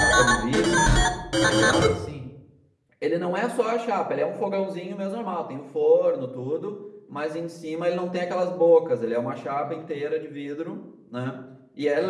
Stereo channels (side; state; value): both; identical; correlation 1.00